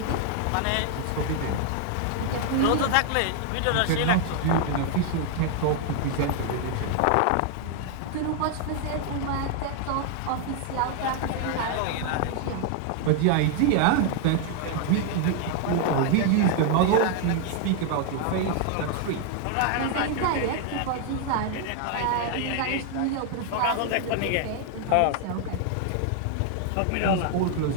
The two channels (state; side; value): different; both; correlation 0.00